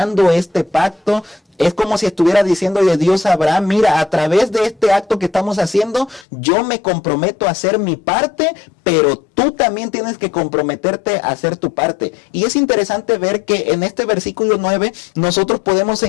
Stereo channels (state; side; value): drops out; right; at 6.2 s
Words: este pacto. Es como si estuviera diciéndole Dios a Abraham, mira, a través de este acto que estamos haciendo, yo me comprometo a hacer mi parte, pero tú también tienes que comprometerte a hacer tu parte. Y es interesante ver que en este versículo 9 nosotros podemos